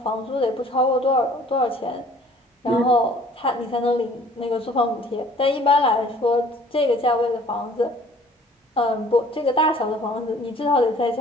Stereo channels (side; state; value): both; normal; correlation 0.53